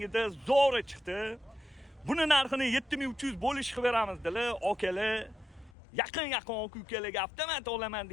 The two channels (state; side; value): drops out; right; at 5.7 s